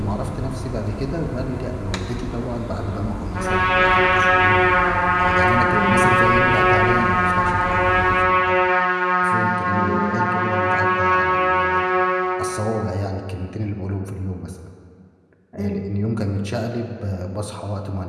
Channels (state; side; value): identical; both; correlation 1.00